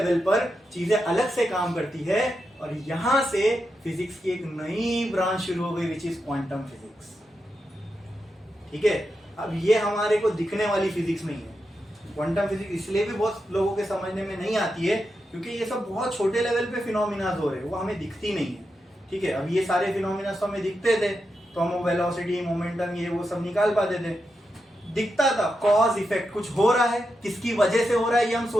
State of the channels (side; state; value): both; normal; correlation 0.87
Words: पर चीजें अलग से काम करती है, और यहां से फिजिक्स की एक नई ब्रांच शुरू हो गई, विच इज क्वांटम फिजिक्स। ठीक है, अब ये हमारे को दिखने वाली फिजिक्स नहीं है। क्वांटम फिजिक्स इसलिए भी बहुत लोगों के समझने में नहीं आती है क्योंकि ये सब बहुत छोटे लेवल पे फिनोमिना हो रहे हैं, वो हमें दिखती नहीं है। ठीक है, अब ये सारे फिनोमिना तो हमें दिखते थे, तो हम वेलोसिटी, मोमेंटम, ये वो सब निकाल पाते थे, दिखता था। कॉज इफेक्ट, कुछ हो रहा है, किसकी वजह से हो रहा है, ये हम